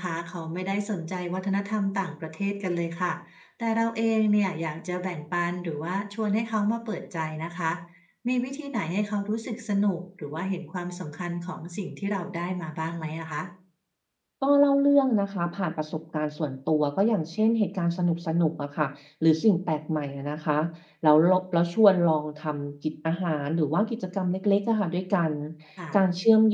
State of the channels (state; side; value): identical; both; correlation 1.00